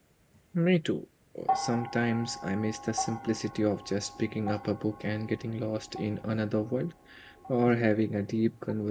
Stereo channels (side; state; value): both; identical; correlation 1.00